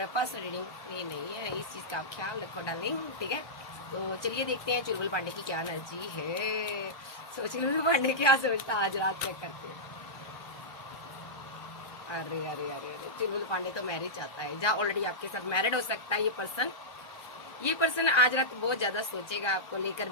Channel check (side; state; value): right; late; 1.4 ms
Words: पर्सनल रीडिंग फ्री नहीं है, इस चीज का आप ख्याल रखो डार्लिंग। ठीक है, तो चलिए देखते हैं चुलबुल पांडे की क्या एनर्जी है। सो चुलबुल पांडे क्या सोचता आज रात चेक करते हैं। अरे अरे अरे अरे, चुलबुल पांडे तो मैरिज चाहता है, जहाँ ऑलरेडी आपके साथ मैरिड हो सकता है ये पर्सन आज रात बहुत ज्यादा सोचेगा आपको लेकर,